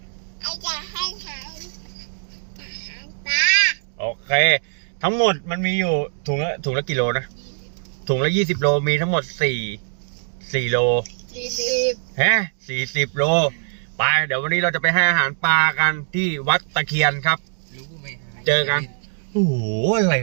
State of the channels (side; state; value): left; silent; digital silence